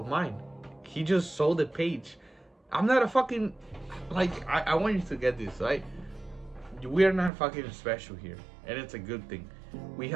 mine. He just saw the page. I'm not a fucking, like, I want you to get this, right? We are not fucking special here, and it's a good thing. We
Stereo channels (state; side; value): drops out; left; at 7.3 s